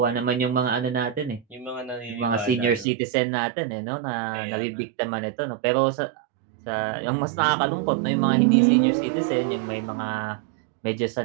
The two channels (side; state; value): left; drops out; at 2.9 s